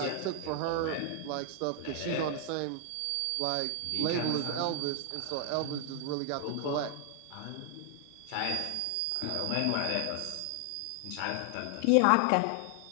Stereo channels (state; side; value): different; both; correlation 0.00